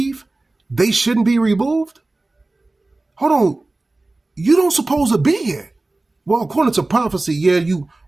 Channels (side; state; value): left; quieter; 3.0 dB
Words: they shouldn't be removed. Hold on, you don't supposed to be here. Well, according to prophecy, yeah, you